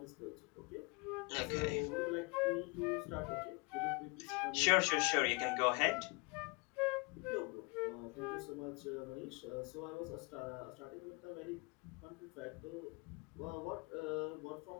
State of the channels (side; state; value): right; quieter; 29.2 dB